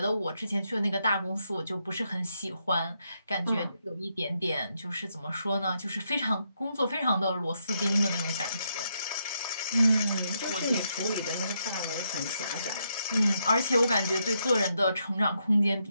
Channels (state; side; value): inverted; both; correlation -0.79